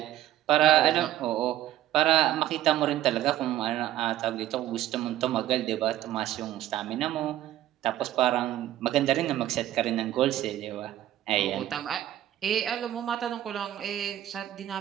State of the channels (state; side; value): quieter; left; 13.2 dB